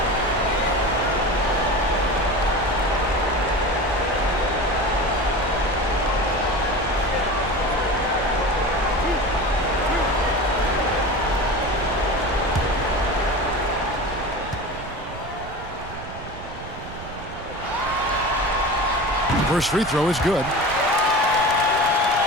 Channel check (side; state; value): right; noise; rumble, 13 dB below the sound